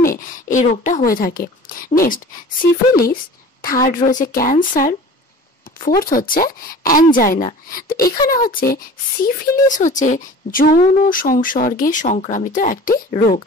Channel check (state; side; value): normal; both; correlation 0.42